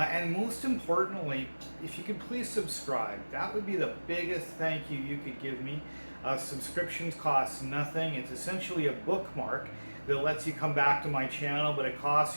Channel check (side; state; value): both; inverted; correlation -1.00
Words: most importantly, if you could please subscribe. That would be the biggest thank you you could give me. Subscriptions cost nothing. It's essentially a bookmark that lets you come back to my channel, but it costs